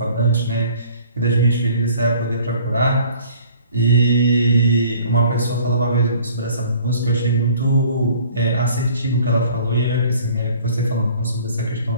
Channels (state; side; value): inverted; both; correlation -0.53